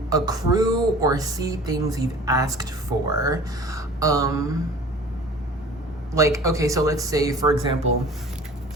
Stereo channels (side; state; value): both; normal; correlation 0.44